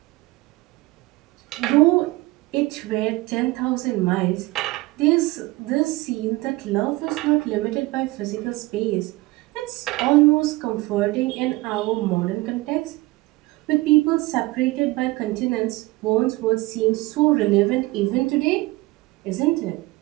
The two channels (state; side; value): quieter; left; 20.8 dB